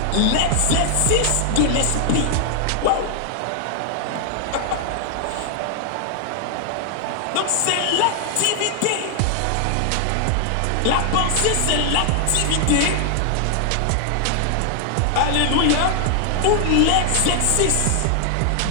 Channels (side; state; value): both; different; correlation 0.00